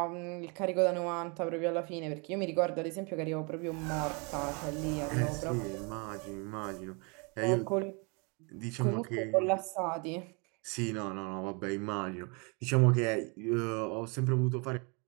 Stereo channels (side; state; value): left; quieter; 32.4 dB